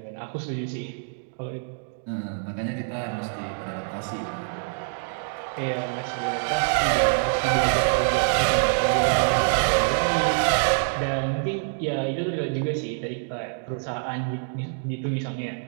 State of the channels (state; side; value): silent; left; digital silence